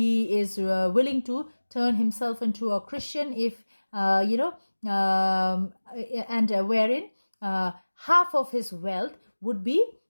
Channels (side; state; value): both; inverted; correlation -1.00